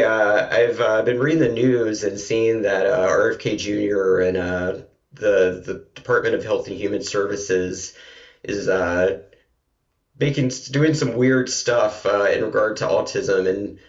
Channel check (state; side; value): identical; both; correlation 1.00